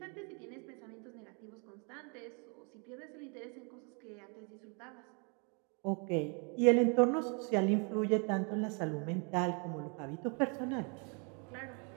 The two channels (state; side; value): quieter; left; 36.1 dB